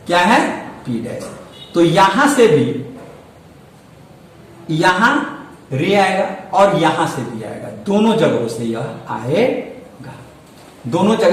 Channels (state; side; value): identical; both; correlation 1.00